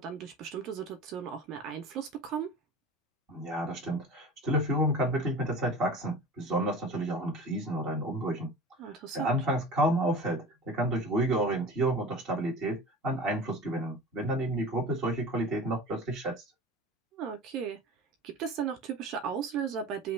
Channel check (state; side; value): normal; both; correlation 0.37